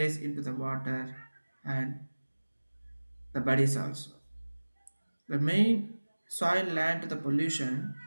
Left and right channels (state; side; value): inverted; both; correlation -1.00